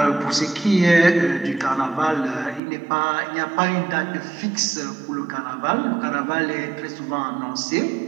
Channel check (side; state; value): left; drops out; at 2.6 s